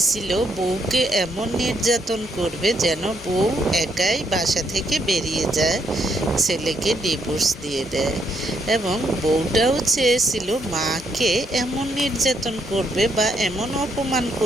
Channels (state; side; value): normal; both; correlation 0.74